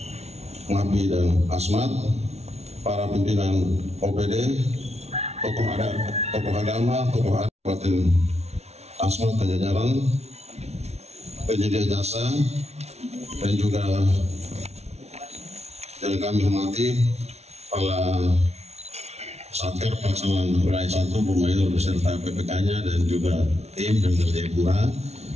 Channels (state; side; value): late; left; 0.31 ms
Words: Ngapi dan Asmat, para pimpinan OPD, tokoh agama, tokoh Kabupaten Asmat dan jajaran, penyedia jasa, dan juga yang kami hormati para Satker Pelaksanaan Wilayah 1 Bumayur beserta PPK-nya dan juga tim dan Jayapura